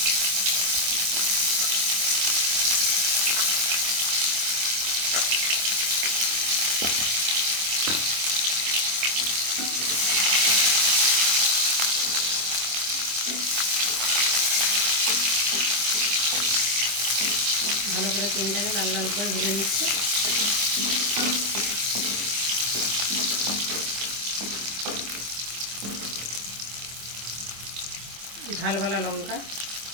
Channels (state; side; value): late; left; 25 ms